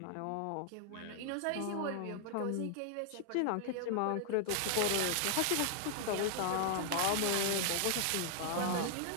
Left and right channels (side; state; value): both; different; correlation 0.00